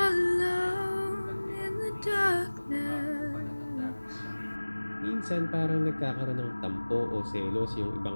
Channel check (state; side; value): inverted; both; correlation -1.00